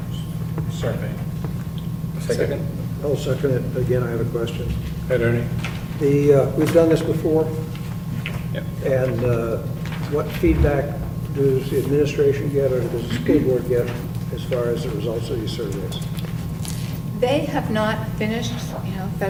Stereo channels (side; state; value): both; identical; correlation 1.00